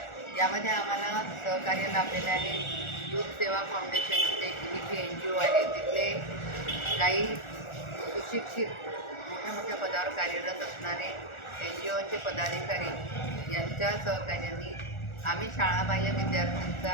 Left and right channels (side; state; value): right; late; 1.4 ms